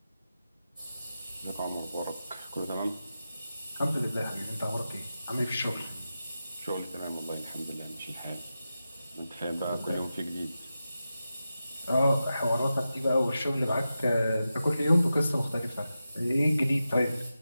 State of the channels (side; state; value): both; inverted; correlation -0.92